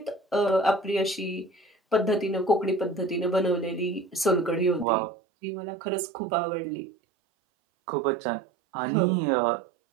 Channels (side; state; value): left; drops out; at 4.9 s